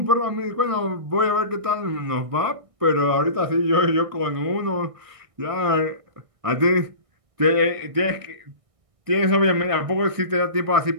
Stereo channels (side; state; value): left; late; 1.6 ms